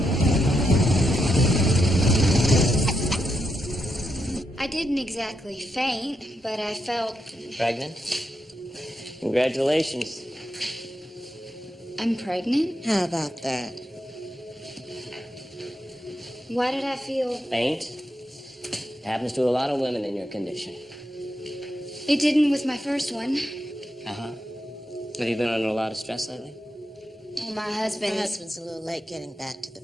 I didn't exactly faint, but I felt Pregnant? Congratulations. I'm pregnant. How about that? Why did I feel? Faint? Happens to a lot of women in your condition. It didn't with my first one. Uh-huh. Have you been under a lot of stress lately? Oh, my husband. My husband's a little late getting back to the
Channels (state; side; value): normal; both; correlation 0.83